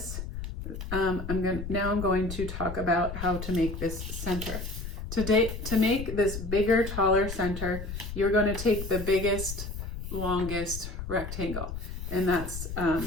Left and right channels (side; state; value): left; noise; rumble, 7 dB below the sound